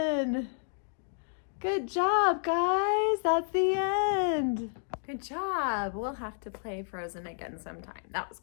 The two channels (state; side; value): silent; right; digital silence